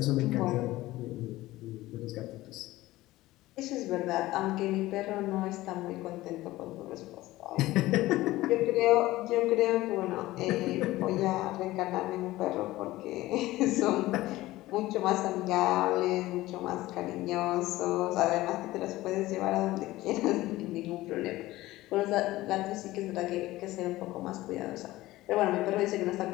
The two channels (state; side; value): quieter; right; 17.4 dB